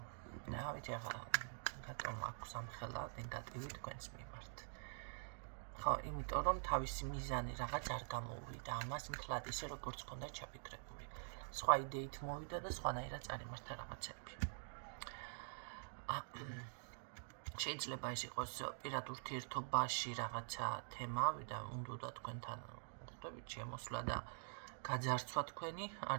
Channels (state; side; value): silent; left; digital silence